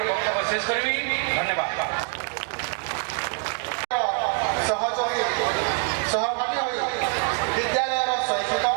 ବକ୍ତବ୍ୟ ଶେଷ କରିବି। ଧନ୍ୟବାଦ। ସହଯୋଗୀ ସହଭାଗୀ ହୋଇ ବିଦ୍ୟାଳୟର ଶୈକ୍ଷିକ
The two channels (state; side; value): quieter; left; 36.5 dB